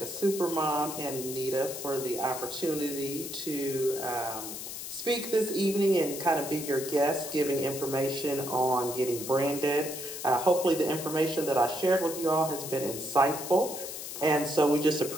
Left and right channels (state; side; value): noise; left; hiss, 8 dB below the sound